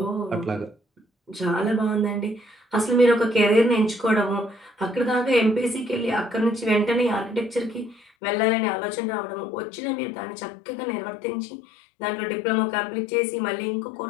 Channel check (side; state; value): right; drops out; at 8.0 s